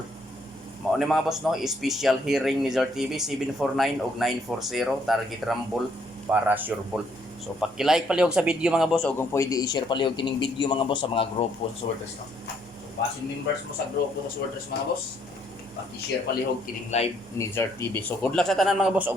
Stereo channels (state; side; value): normal; both; correlation 0.69